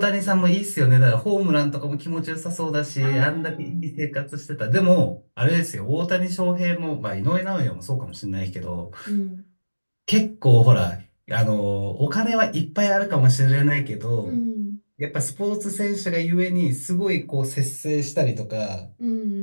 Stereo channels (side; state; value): both; inverted; correlation -1.00